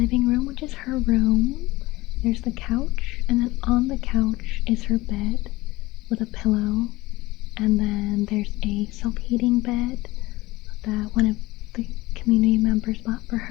room, which is her room, there's the couch, and then on the couch is her bed with a pillow, and then there's a self-heating bed that when the community members bought for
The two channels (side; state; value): right; quieter; 19.8 dB